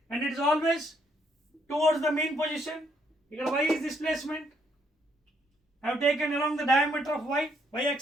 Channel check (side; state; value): both; normal; correlation 0.72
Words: and it is always towards the mean position. Here y is displacement. I have taken along the diameter of y